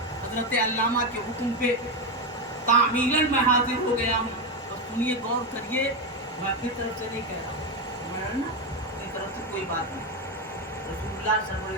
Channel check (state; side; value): normal; both; correlation 0.10